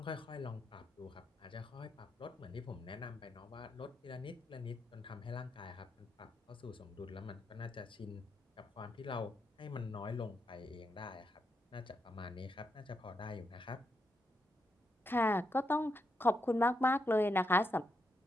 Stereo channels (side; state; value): both; normal; correlation 0.82